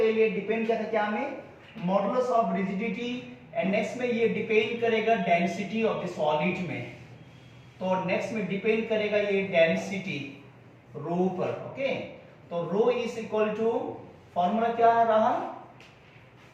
ये डिपेंड क्या था, क्या में, modulus of rigidity. And next में ये डिपेंड करेगा डेंसिटी ऑफ द सॉलिड में। तो नेक्स्ट में डिपेंड करेगा ये डेंसिटी रो पर। ओके, तो rho is equal to, formula क्या रहा,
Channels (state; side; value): identical; both; correlation 1.00